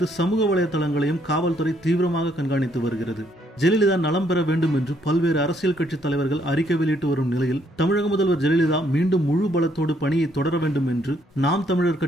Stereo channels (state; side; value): normal; both; correlation 0.70